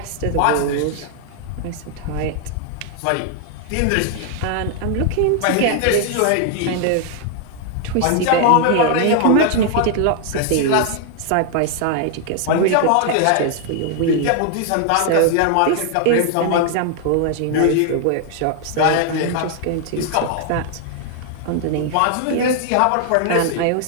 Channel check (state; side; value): different; both; correlation 0.00